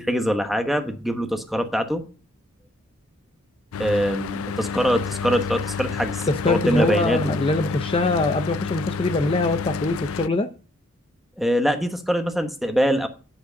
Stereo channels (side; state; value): both; normal; correlation 0.70